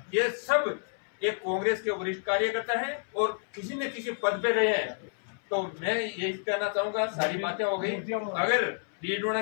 ये सब एक कांग्रेस के वरिष्ठ कार्यकर्ता हैं और किसी न किसी पद पे रहे हैं। तो मैं यही कहना चाहूंगा, सारी बातें हो गई। अगर डीडोना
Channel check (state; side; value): silent; right; 58 dB below the other